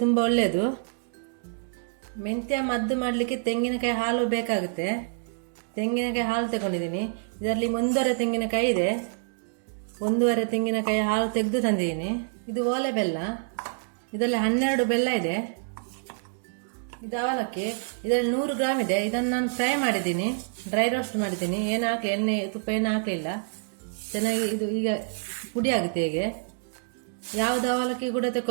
ತುಂಬ ಒಳ್ಳೆಯದು. ಮೆಂತ್ಯ ಮದ್ದು ಮಾಡಲಿಕ್ಕೆ ತೆಂಗಿನಕಾಯಿ ಹಾಲು ಬೇಕಾಗುತ್ತೆ. ತೆಂಗಿನಕಾಯಿ ಹಾಲು ತಗೊಂಡಿದ್ದೀನಿ. ಇದರಲ್ಲಿ 1.5 ತೆಂಗಿನಕಾಯಿ ಇದೆ. 1.5 ತೆಂಗಿನಕಾಯಿ ಹಾಲು ತೆಗೆದು ತಂದಿದ್ದೀನಿ. ಇದು ಓಲೆ ಬೆಲ್ಲ. ಇದರಲ್ಲಿ 12 ಬೆಲ್ಲ ಇದೆ. ಇದು ಅವಲಕ್ಕಿ. ಇದರಲ್ಲಿ 100 ಗ್ರಾಮ್ ಇದೆ. ಇದನ್ನು ನಾನು ಫ್ರೈ ಮಾಡಿದ್ದೀನಿ, ಡ್ರೈ ರೋಸ್ಟ್ ಮಾಡಿದ್ದೀನಿ. ಏನು ಹಾಕಿ ಎಣ್ಣೆ ತುಪ್ಪ ಏನು ಹಾಕಲಿಲ್ಲ. ಚೆನ್ನಾಗಿ ಇದು ಈಗ ಪುಡಿ ಆಗುತ್ತೆ. ಹೀಗೆ ಯಾವುದು ಅವಲಕ್ಕಿ ಕೂಡ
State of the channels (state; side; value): silent; left; digital silence